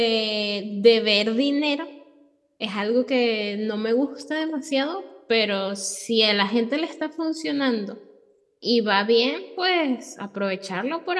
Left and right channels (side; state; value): both; identical; correlation 1.00